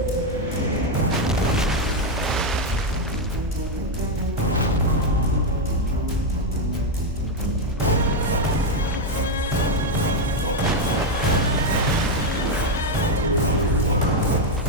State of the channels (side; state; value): both; normal; correlation 0.04